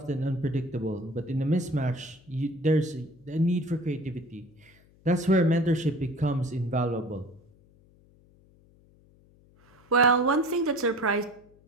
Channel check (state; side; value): noise; left; hum, 29 dB below the sound